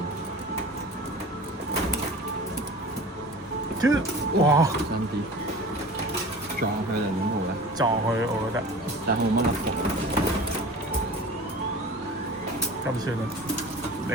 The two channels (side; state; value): both; normal; correlation 0.38